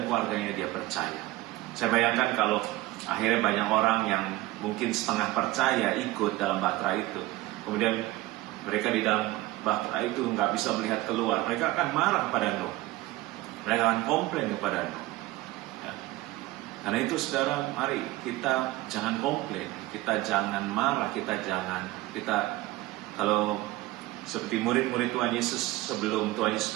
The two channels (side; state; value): left; quieter; 18.3 dB